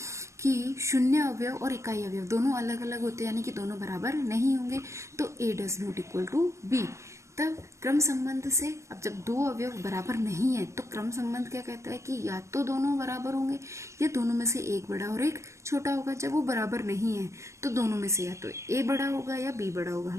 कि शून्य अवयव और इकाई अवयव दोनों अलग अलग होते हैं, यानी कि दोनों बराबर नहीं होंगे, तो A does not equal to B। तब क्रम संबंध से अब जब 2 अवयव बराबर नहीं है तो क्रम संबंध क्या कहता है कि या तो दोनों बराबर होंगे या दोनों में से एक बड़ा और एक छोटा होगा। जब वो बराबर नहीं है तो दोनों में से या तो A बड़ा होगा या B बड़ा होगा।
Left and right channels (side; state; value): left; late; 0.14 ms